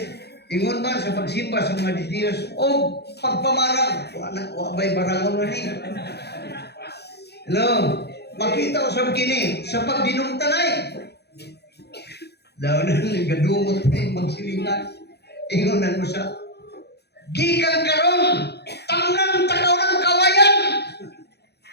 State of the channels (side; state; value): right; late; 0.48 ms